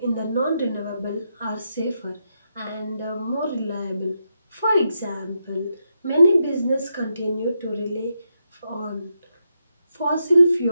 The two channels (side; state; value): both; inverted; correlation -0.83